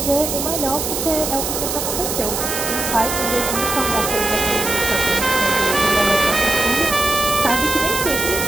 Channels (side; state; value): right; noise; hiss, 3 dB below the sound